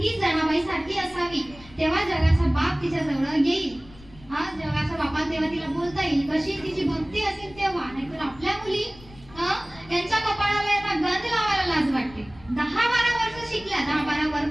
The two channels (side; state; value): left; noise; rumble, 21 dB below the sound